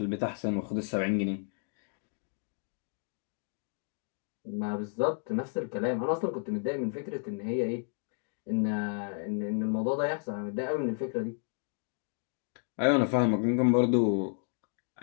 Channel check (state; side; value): silent; right; 56 dB below the other